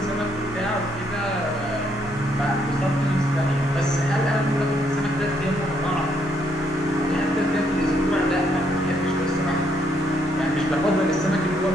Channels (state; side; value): normal; both; correlation 0.72